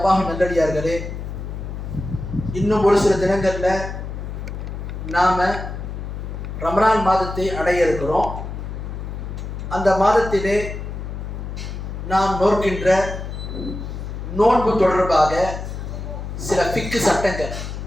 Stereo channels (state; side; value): noise; left; hum, 7 dB below the sound